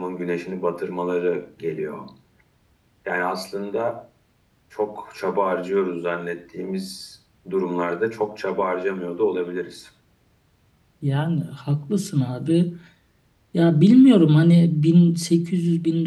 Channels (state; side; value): identical; both; correlation 1.00